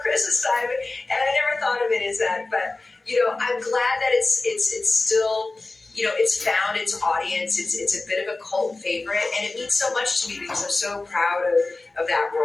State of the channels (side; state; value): right; quieter; 3.3 dB